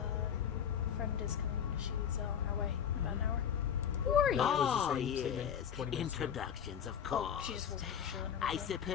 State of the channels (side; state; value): right; quieter; 8.3 dB